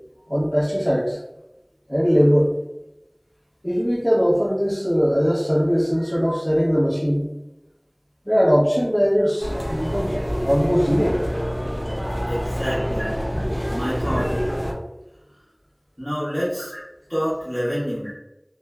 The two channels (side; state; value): both; identical; correlation 1.00